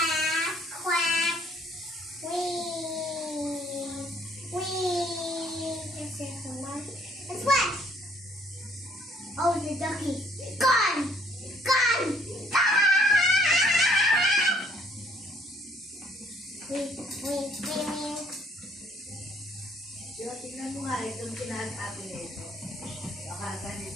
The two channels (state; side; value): normal; both; correlation 0.63